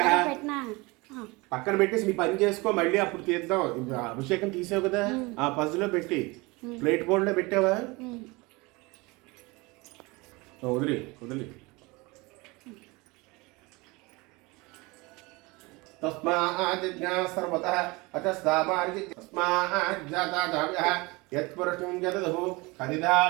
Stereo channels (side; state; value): left; quieter; 24.6 dB